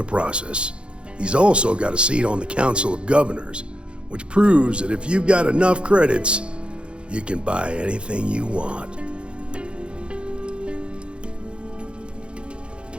process. He's also got a seat on the Council of Governors, which proves that if you've got enough credits, you can buy anything you want.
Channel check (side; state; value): left; late; 0.057 ms